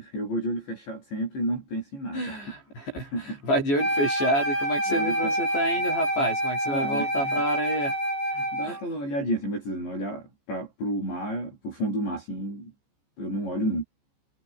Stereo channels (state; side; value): late; right; 14 ms